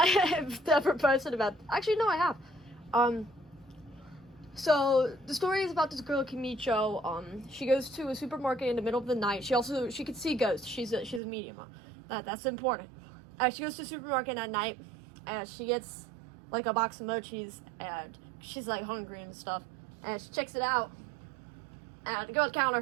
have ever posted about. Actually, no, I have. So the story is about this girl Kimicho. She goes to a supermarket in the middle of the night. She can see ghosts. She's a medium. That's important. She goes to a supermarket at night, and she gets like a box of mochis, and she's like hungry and stuff, and she checks it out, and the girl at the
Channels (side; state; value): left; drops out; at 11.2 s